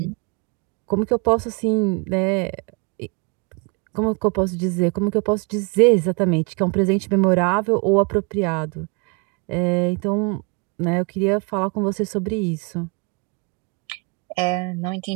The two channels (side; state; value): left; quieter; 32.2 dB